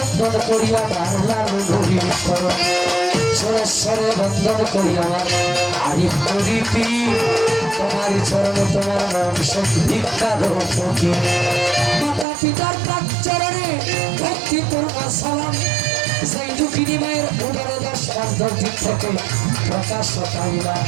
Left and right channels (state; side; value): drops out; left; at 12.2 s